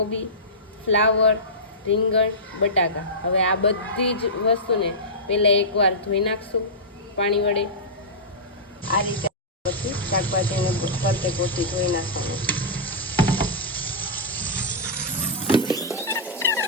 ફ્લાવર, રીંગણ, બટાકા. હવે આ બધી જ વસ્તુને પહેલાં એકવાર ધોઈ નાખશું પાણી વડે. આ રીતે પછી શાકભાજીને ફરતે કોથી ધોઈ નાખવાનું.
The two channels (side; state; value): both; normal; correlation -0.15